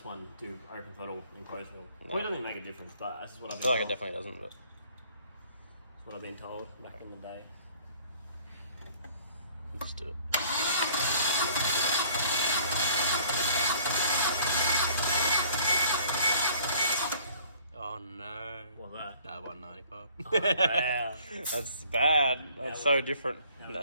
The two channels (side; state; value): both; inverted; correlation -0.56